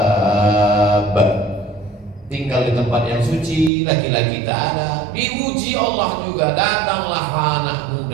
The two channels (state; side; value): drops out; left; at 3.7 s